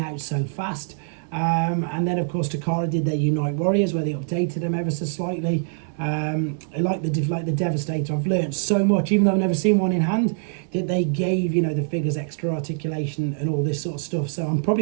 so fast. And then, of course, Takara did their Unite Warriors, where they updated them ever so slightly. I like the Devastator. I've learned so much, even though I've never seen one in hand, that they gave, you know, the figures extra articulation and all this sort of stuff. So I'm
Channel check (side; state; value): left; silent; 63 dB below the other